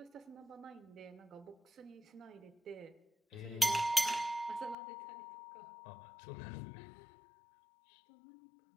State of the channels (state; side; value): drops out; right; at 4.8 s